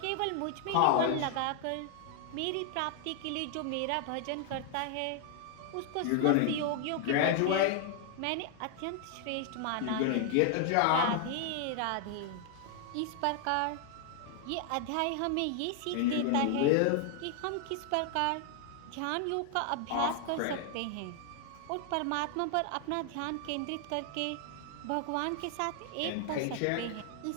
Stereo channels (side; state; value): both; different; correlation 0.00